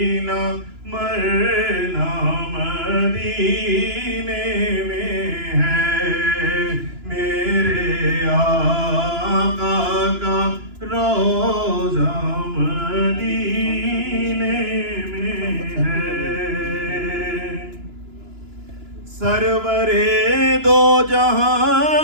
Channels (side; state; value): left; late; 2.9 ms